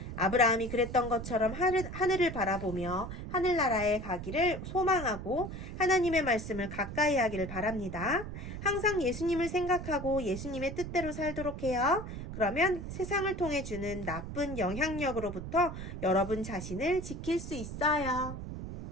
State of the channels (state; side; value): noise; right; rumble, 8 dB below the sound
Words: 아브라함이 그랬던 것처럼 하늘을 바라보며 하늘나라에 가기를 소망하고 하나님의 말씀을 가까이 하기를 바랍니다. 항상 예수님을 생각하고 예수님의 뜻대로 살도록 해요. 그러면 세상을 통해 주는 나쁜 영향력으로부터 여러분 자신을 지킬 수 있어요.